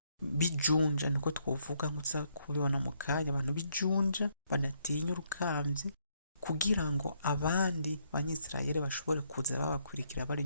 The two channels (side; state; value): both; inverted; correlation -0.73